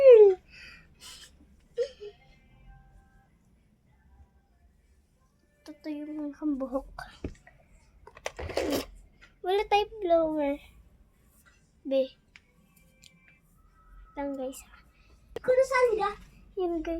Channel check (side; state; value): both; identical; correlation 1.00